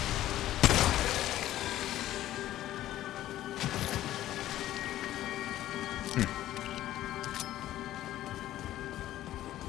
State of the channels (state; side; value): quieter; right; 13.8 dB